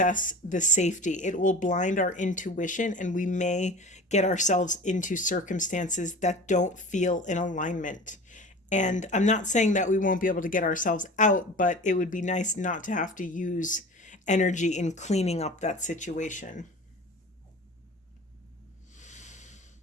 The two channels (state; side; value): normal; both; correlation 0.38